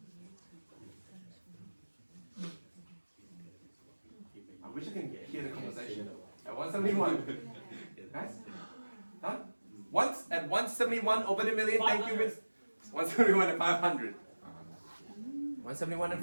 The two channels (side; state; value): both; inverted; correlation -1.00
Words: I wish I can hear the conversation. At 171. Guys? Done? Once at 171 over the million, thank you, Miss. 171 and 500. 171 and